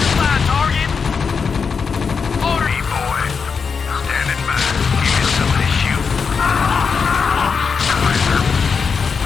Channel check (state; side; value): quieter; right; 5.6 dB